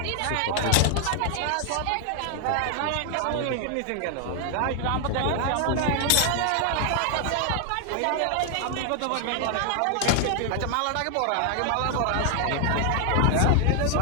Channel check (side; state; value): both; different; correlation 0.00